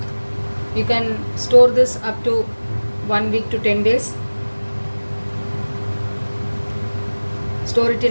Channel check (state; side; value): inverted; both; correlation -1.00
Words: You can store this up to 1 week to 10 days. Store it